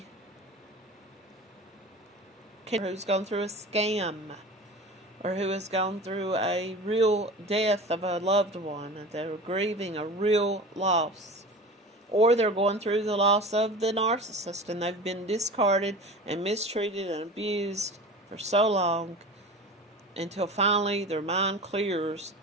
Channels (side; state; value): both; normal; correlation 0.34